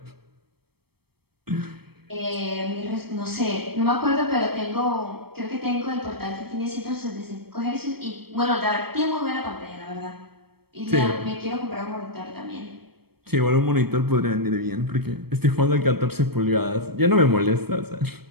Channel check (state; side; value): late; left; 0.96 ms